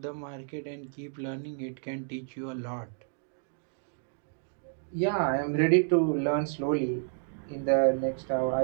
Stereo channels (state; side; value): silent; left; digital silence